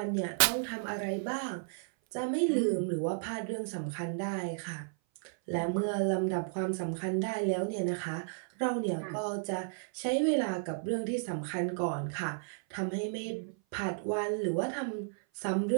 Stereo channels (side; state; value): left; silent; 56 dB below the other